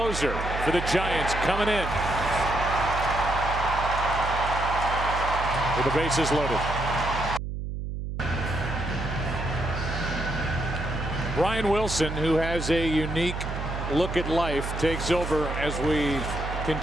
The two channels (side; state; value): right; noise; hum, 5 dB below the sound